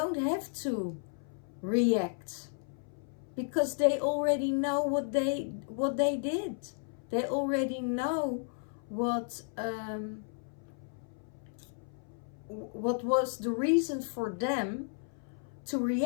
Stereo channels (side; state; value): right; silent; 55 dB below the other